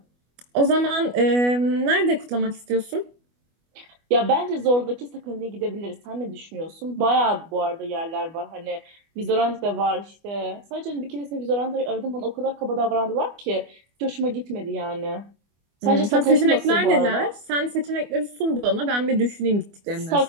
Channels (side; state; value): left; late; 25 ms